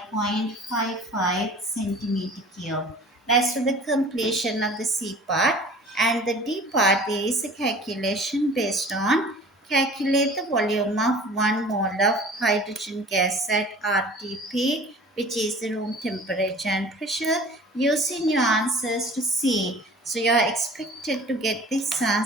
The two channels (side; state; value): both; normal; correlation 0.44